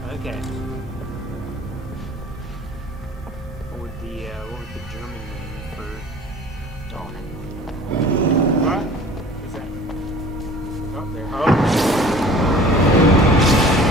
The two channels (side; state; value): both; normal; correlation 0.45